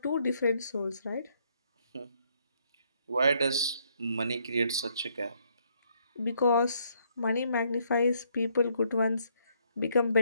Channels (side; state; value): both; inverted; correlation -0.70